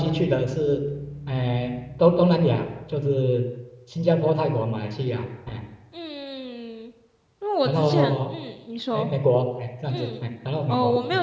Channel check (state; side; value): identical; both; correlation 1.00